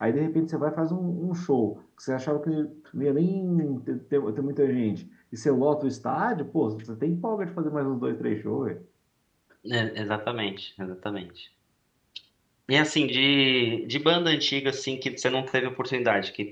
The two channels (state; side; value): identical; both; correlation 1.00